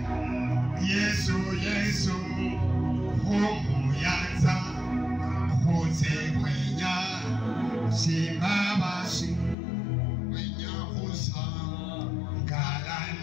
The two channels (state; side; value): drops out; right; at 9.6 s